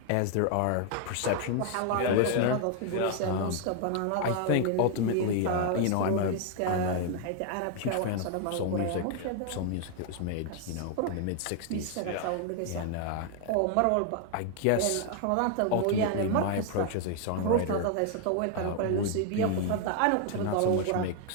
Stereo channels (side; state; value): both; different; correlation 0.00